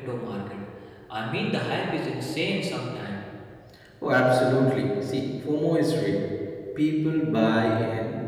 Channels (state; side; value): identical; both; correlation 1.00